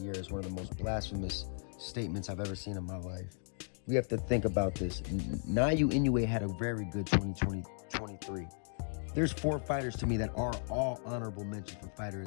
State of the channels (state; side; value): silent; right; 54 dB below the other